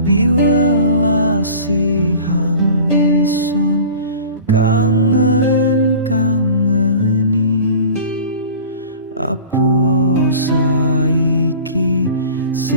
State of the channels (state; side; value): inverted; both; correlation -0.41